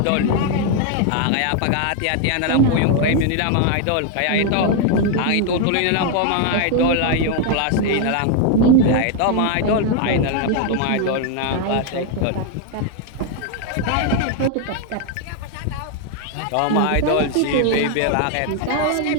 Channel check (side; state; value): both; different; correlation 0.01